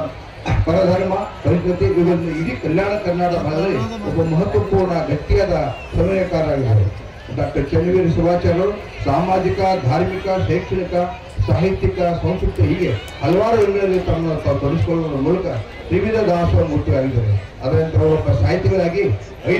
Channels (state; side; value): identical; both; correlation 1.00